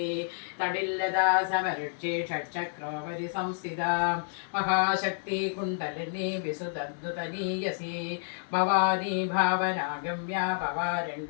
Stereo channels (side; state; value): right; silent; digital silence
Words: തടില്ലതാ സമരുക്ഷി ഷഡ്ചക്രോപരി സംസ്ഥിത Mahashakti kundalini വിസുതദ്ദുതനീയസി Bhavani ഭാവനാഗമ്യ